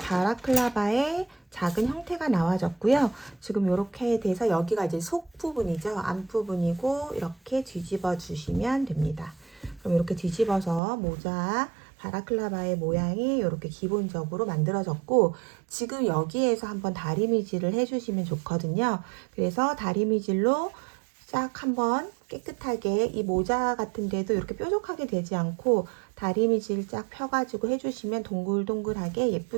바라클라바의 작은 형태가 나와졌고요. 지금 이렇게 돼서 여기가 이제 속 부분이죠. 앞 부분이고 이렇게 뒤집어 주시면 됩니다. 그럼 이렇게 뒤집어서 모자 바라클라바의 모양이 이렇게 기본적으로 만들어졌고 지금 여기에서 한번 다리미질을 해주시면 좋거든요. 그래서 다리미질로 싹 한번 깨끗하게 이 모자 같은 데도 이렇게 뾰족하게 되지 않고 다리미질 쫙 펴가지고 해주시면 동글동글하게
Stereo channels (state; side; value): drops out; left; at 10.8 s